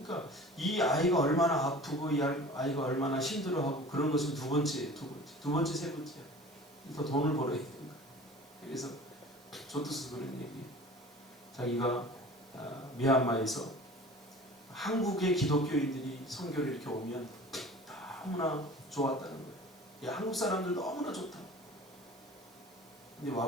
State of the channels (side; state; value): right; noise; hiss, 27 dB below the sound